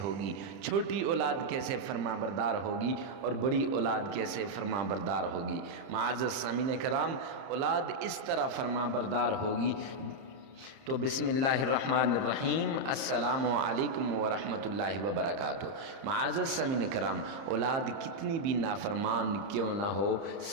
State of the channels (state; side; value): late; left; 30 ms